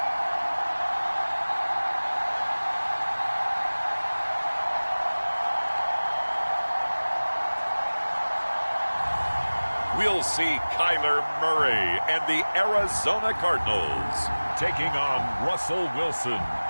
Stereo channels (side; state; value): both; inverted; correlation -1.00